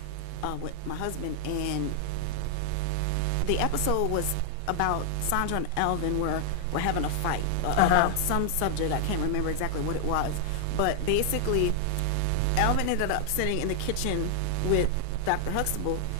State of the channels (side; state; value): both; different; correlation 0.00